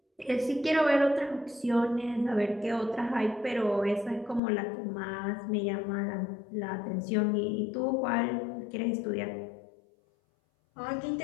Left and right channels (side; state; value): right; drops out; at 4.4 s